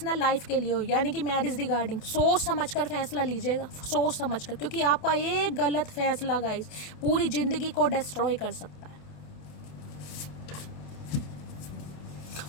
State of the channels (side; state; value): right; late; 28 ms